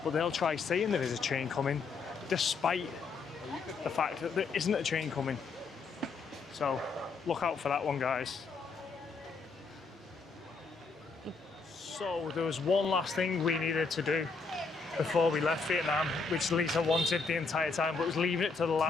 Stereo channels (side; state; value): right; quieter; 4.5 dB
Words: But they'll try saying there is a train coming despite the fact that there isn't a train coming. So look out for that one, guys. So there was one last thing we needed to do before we left Vietnam, which Lisa wanted the entire time, but was leaving it to the